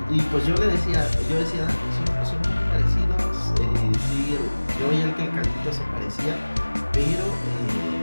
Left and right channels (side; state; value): both; inverted; correlation -1.00